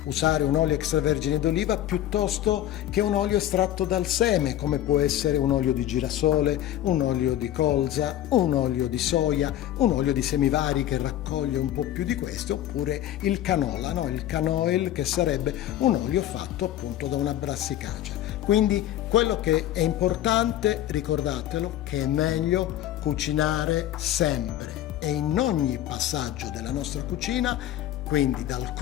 usare un olio extravergine d'oliva piuttosto che un olio estratto dal seme, come può essere un olio di girasole, un olio di colza, un olio di soia, un olio di semivari che raccoglie un po' più di questo, oppure il canola, no? Il canoil, che sarebbe un olio fatto appunto da una brassicacea. Quindi quello che è importante, ricordatelo, che è meglio cucinare sempre e in ogni passaggio della nostra cucina, quindi dal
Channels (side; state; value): right; quieter; 12.5 dB